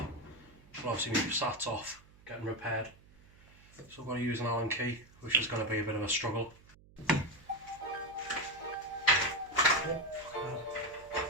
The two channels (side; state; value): right; noise; hum, 25 dB below the sound